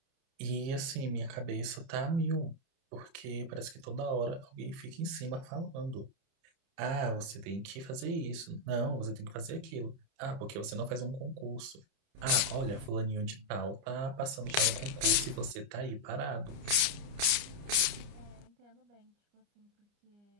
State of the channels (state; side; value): late; left; 30 ms